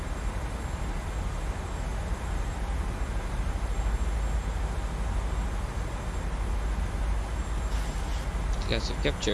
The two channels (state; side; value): identical; both; correlation 1.00